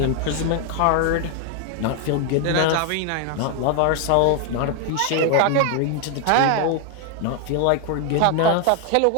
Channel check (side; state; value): both; different; correlation 0.00